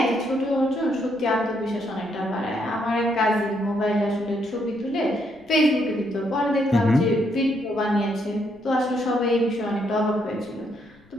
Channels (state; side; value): noise; left; rumble, 29 dB below the sound